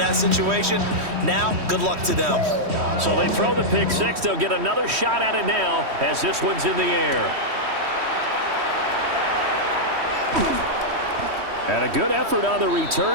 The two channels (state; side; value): late; left; 3.1 ms